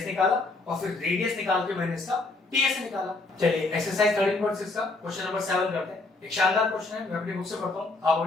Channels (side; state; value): right; quieter; 3.3 dB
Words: निकाला, और फिर रेडियस निकाल के मैंने इसका टीएस निकाला। चलिए एक्सरसाइज 13.6 का क्वेश्चन नंबर 7 करते हैं। एक शानदार क्वेश्चन है, मैं अपनी बुक से पढ़ता हूं, आप